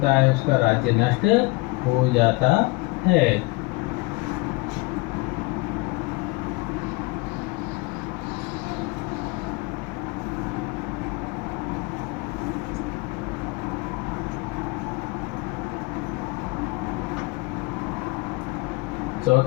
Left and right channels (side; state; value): right; quieter; 23.8 dB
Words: है उसका राज्य नष्ट हो जाता है।